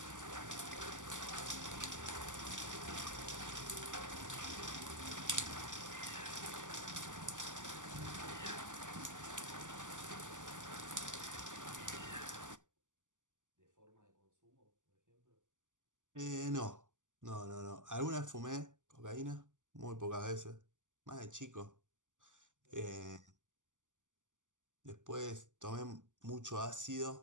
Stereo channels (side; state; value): left; late; 0.87 ms